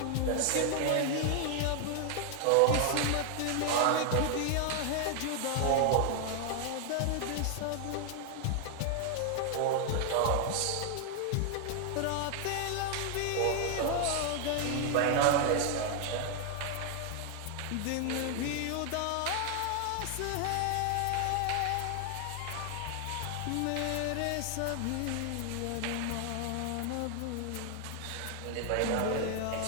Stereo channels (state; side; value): different; both; correlation 0.00